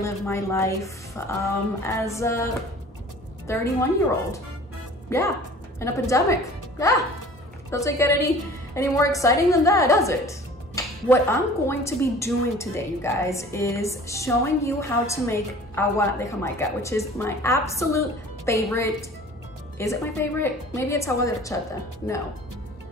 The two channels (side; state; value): both; normal; correlation 0.46